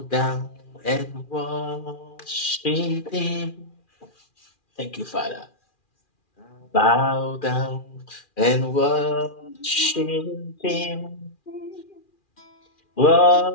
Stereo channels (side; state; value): right; late; 2.4 ms